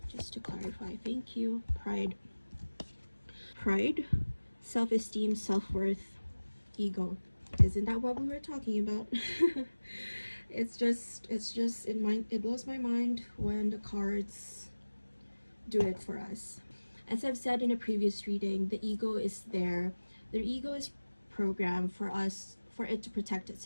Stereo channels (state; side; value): inverted; both; correlation -1.00